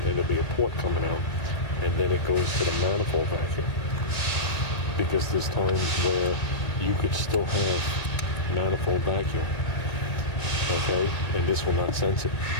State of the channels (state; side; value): late; right; 1.9 ms